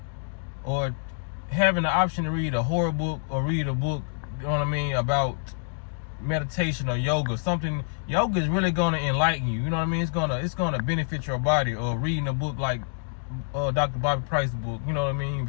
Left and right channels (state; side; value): silent; right; digital silence